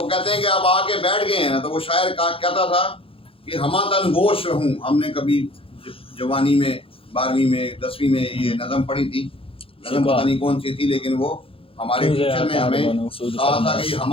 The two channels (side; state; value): right; late; 0.27 ms